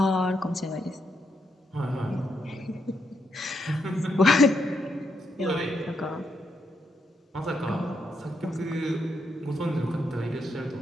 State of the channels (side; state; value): both; normal; correlation 0.79